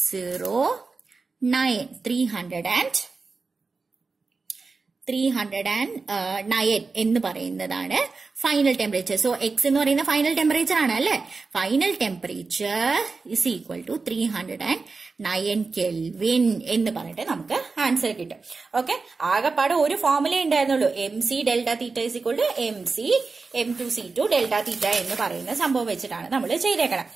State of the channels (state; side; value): quieter; left; 4.2 dB